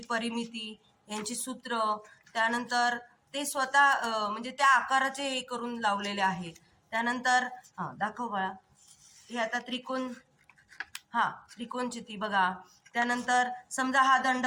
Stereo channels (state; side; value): identical; both; correlation 1.00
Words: परिमिती, यांची सूत्र, त्यानंतर ते स्वतः म्हणजे त्या आकाराचे हे करून लावलेले आहे. त्यानंतर दाखव बाळा, हे आता त्रिकोण, त्रिकोणचिती बघा. त्यानंतर समजा हा